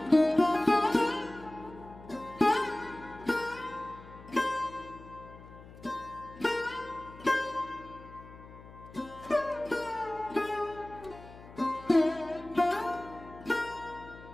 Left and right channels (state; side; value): noise; left; hum, 18 dB below the sound